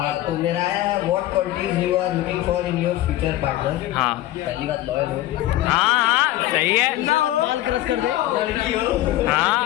तो मेरा है what qualities you are looking for in your future partner. हाँ पहली बात लॉयल हो। हाँ सही है। माल क्रश कर दे। लड़की हो। हाँ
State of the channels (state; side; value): quieter; right; 15.2 dB